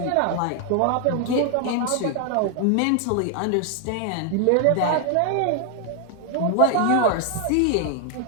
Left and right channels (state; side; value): different; both; correlation 0.00